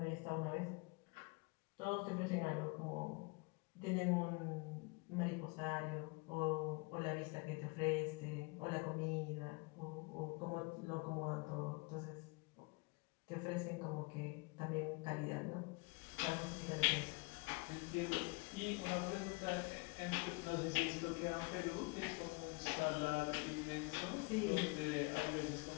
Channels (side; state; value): right; quieter; 28.5 dB